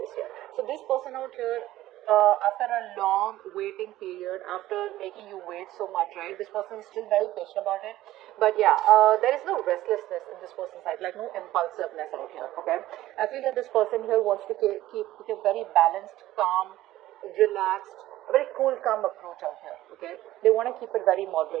here. So this person out here, after a long waiting period, after making you wait so much, right, this person is still very patient about it. But yeah, there is no restlessness in this person's side, like no impulsiveness out here, okay? I feel that this person here wants to keep a very balanced, calm, relaxed, a very cool, calm approach out here, okay? They want to keep it very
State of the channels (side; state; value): left; quieter; 15.2 dB